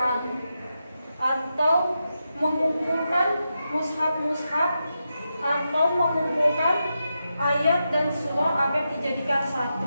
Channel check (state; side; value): inverted; both; correlation -0.88